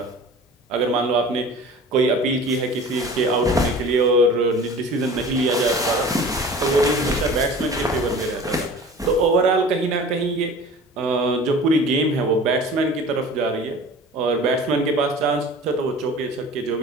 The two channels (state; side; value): normal; both; correlation 0.41